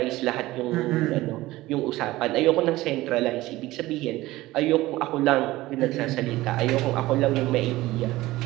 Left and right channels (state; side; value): quieter; left; 17.9 dB